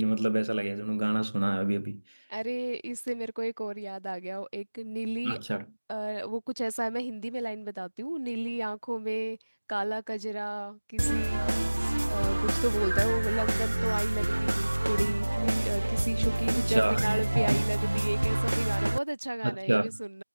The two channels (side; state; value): both; inverted; correlation -1.00